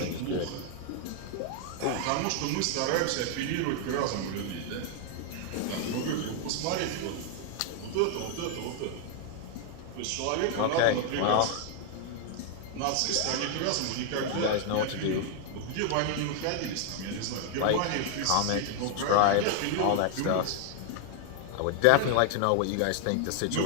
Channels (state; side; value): different; both; correlation 0.00